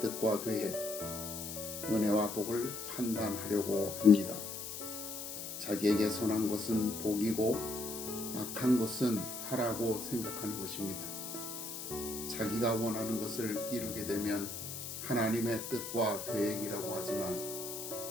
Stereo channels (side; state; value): left; noise; hiss, 7 dB below the sound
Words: 계획, 은혜와 복을 판단하려고 합니다. 자기에게 선한 것은 복이고 악한 것은 화라고 생각하는 것입니다. 자기가 원하는 것을 이루게 되면 하나님의 뜻과 계획이라고 하지만